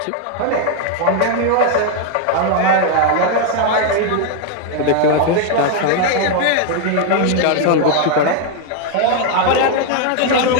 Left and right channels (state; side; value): different; both; correlation 0.00